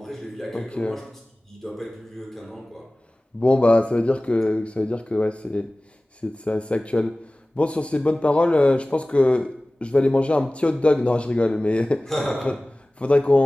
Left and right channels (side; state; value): both; normal; correlation 0.98